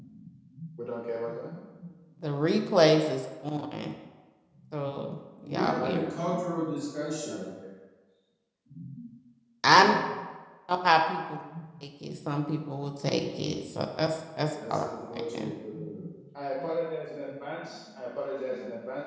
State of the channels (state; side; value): identical; both; correlation 1.00